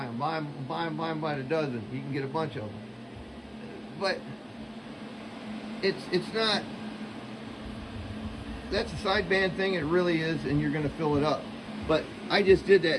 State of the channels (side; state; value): both; identical; correlation 1.00